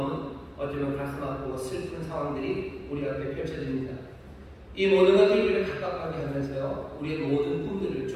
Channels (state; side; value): identical; both; correlation 1.00